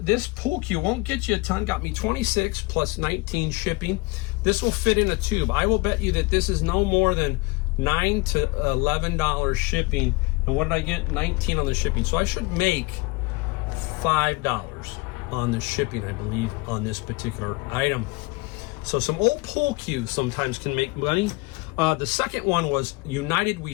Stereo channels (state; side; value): quieter; right; 24.6 dB